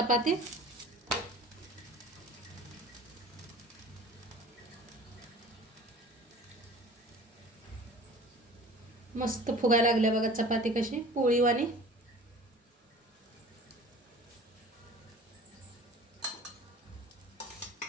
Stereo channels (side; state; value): both; normal; correlation 0.44